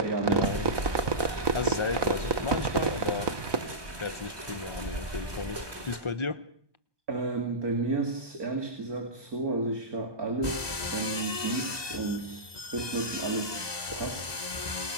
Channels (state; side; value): late; left; 1.2 ms